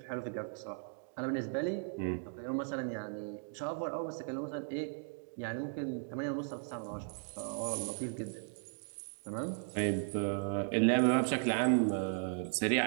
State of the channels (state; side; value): silent; left; 53 dB below the other